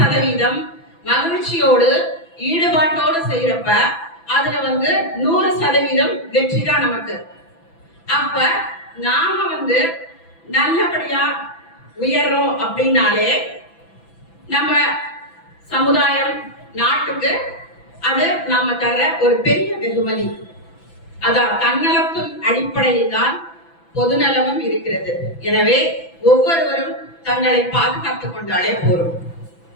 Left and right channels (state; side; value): late; right; 6.0 ms